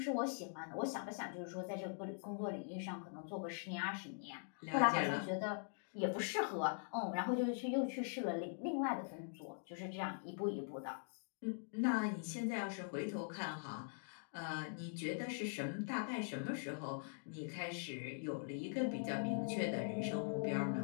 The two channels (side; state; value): right; silent; digital silence